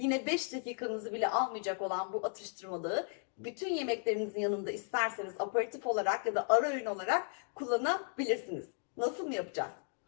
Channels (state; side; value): silent; right; 54 dB below the other